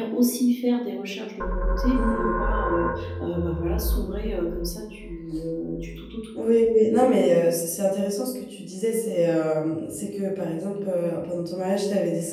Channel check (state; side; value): identical; both; correlation 1.00